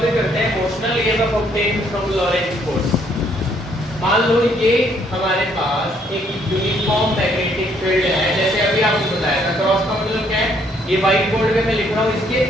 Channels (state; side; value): normal; both; correlation 0.67